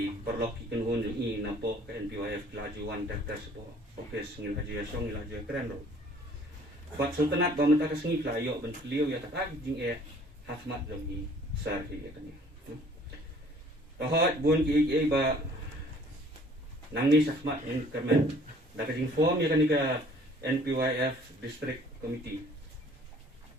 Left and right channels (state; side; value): normal; both; correlation 0.55